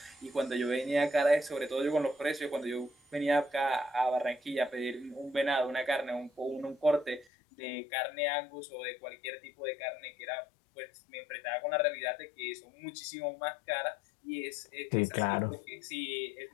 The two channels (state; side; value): drops out; right; at 7.2 s